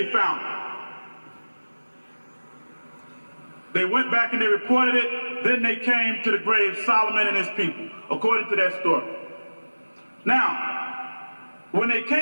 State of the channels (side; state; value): both; inverted; correlation -1.00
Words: found him. They went back and they reported it. Then they came to the grave, Solomon and his people, according to that story. Now, when they